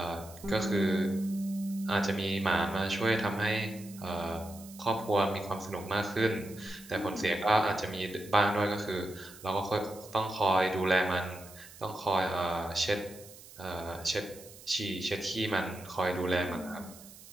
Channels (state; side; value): noise; right; hiss, 19 dB below the sound